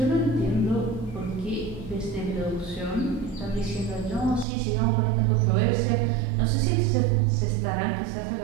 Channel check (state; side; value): drops out; left; at 4.5 s